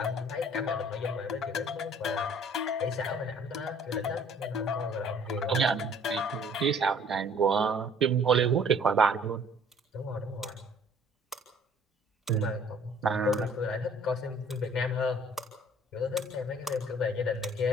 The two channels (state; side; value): normal; both; correlation 0.56